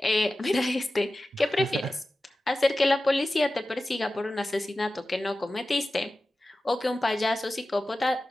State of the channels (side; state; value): both; normal; correlation 0.95